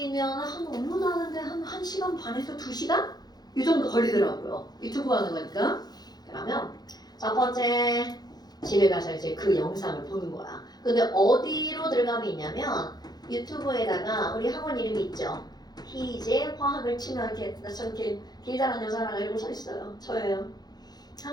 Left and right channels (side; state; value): right; late; 0.19 ms